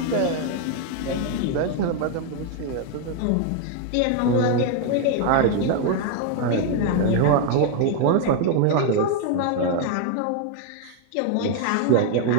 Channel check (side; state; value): both; different; correlation 0.00